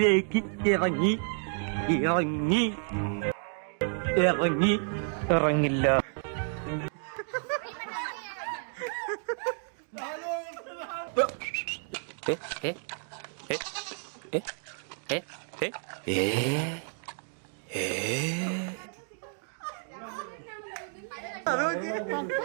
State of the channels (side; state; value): left; silent; 57 dB below the other